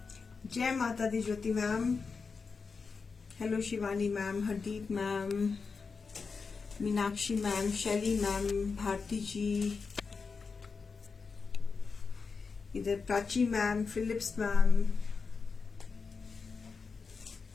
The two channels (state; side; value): quieter; right; 4.9 dB